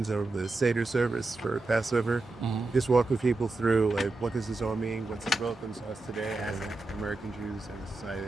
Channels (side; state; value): left; quieter; 3.2 dB